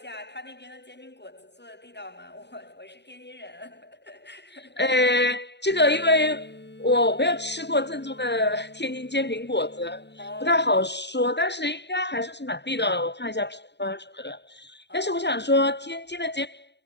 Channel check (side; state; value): right; late; 0.50 ms